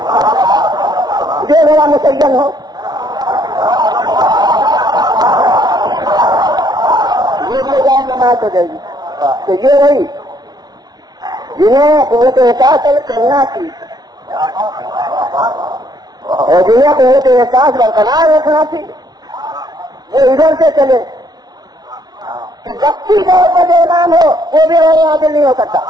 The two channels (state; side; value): late; left; 0.19 ms